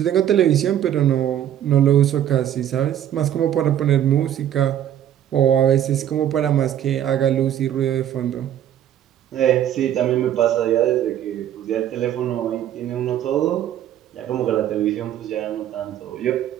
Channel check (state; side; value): quieter; left; 10.8 dB